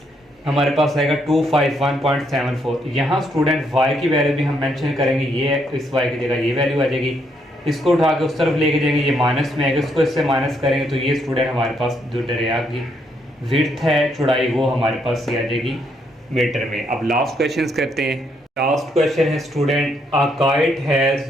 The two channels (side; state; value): both; normal; correlation 0.74